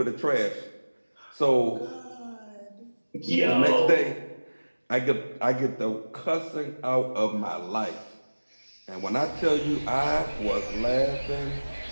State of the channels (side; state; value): both; inverted; correlation -1.00